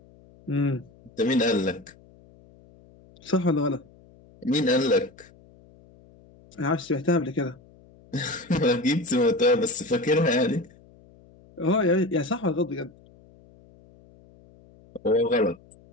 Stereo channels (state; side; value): noise; left; hum, 26 dB below the sound